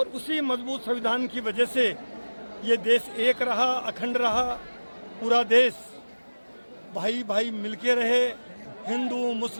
उसी मजबूत संविधान की वजह से ये देश एक रहा, अखंड रहा। पूरा देश भाई भाई मिलके रहे, हिंदू,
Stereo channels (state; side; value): inverted; both; correlation -1.00